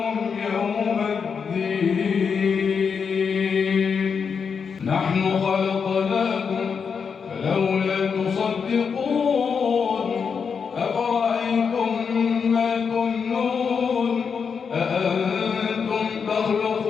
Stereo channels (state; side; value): quieter; right; 6.2 dB